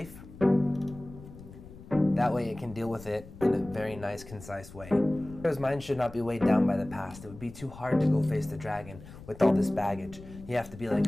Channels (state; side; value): noise; left; rumble, 17 dB below the sound